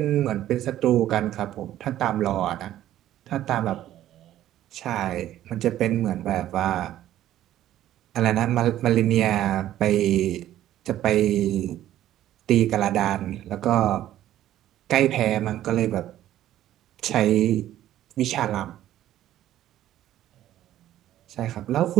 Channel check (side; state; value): left; quieter; 12.8 dB